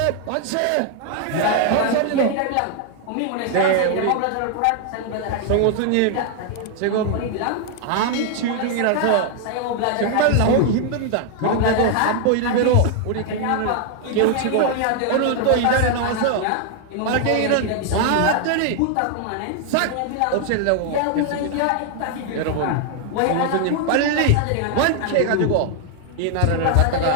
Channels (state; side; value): different; both; correlation 0.00